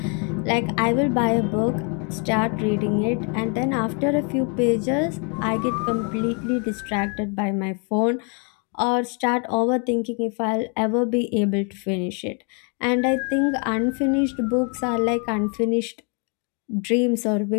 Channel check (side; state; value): right; quieter; 36.6 dB